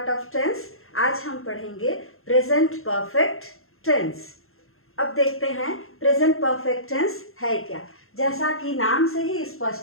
of tense. आज हम पढ़ेंगे present perfect tense. अब देखते हैं present perfect tense है क्या. जैसा कि नाम से ही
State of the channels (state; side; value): late; right; 0.62 ms